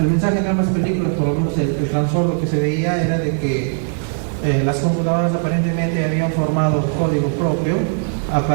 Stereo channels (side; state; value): left; silent; 64 dB below the other